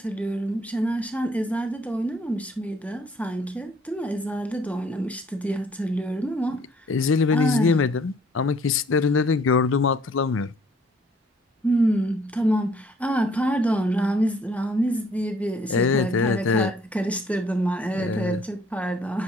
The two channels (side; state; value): both; normal; correlation 0.60